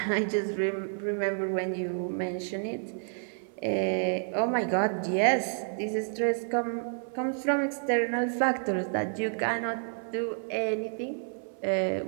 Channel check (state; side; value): silent; left; 58 dB below the other